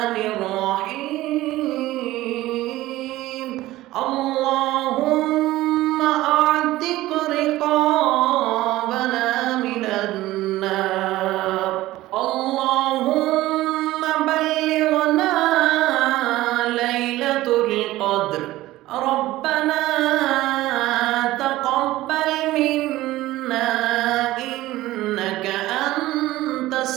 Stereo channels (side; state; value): left; quieter; 16.7 dB